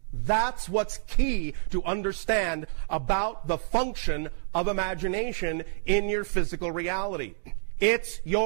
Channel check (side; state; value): left; silent; digital silence